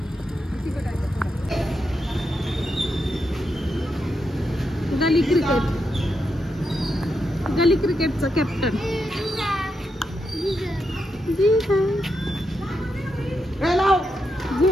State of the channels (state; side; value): normal; both; correlation 0.84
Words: गली क्रिकेटचा कॅप्टन